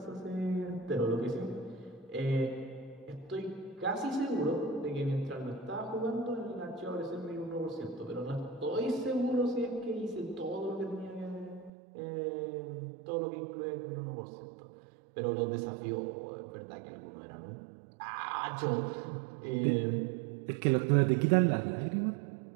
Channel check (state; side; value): drops out; left; at 11.7 s